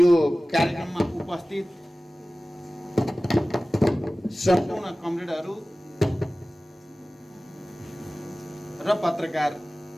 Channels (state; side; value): normal; both; correlation 0.97